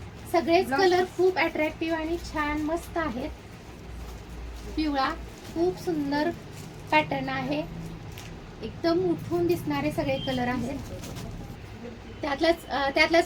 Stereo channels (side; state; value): both; identical; correlation 1.00